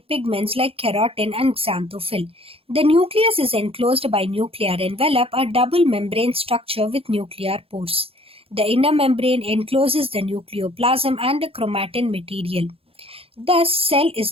like keratin and xanthophyll. The nucleus is enclosed by nuclear envelope, a double membrane structure with nuclear pores. The inner membrane encloses the nucleoplasm and the chromatin material. Thus, cell is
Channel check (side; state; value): left; late; 0.27 ms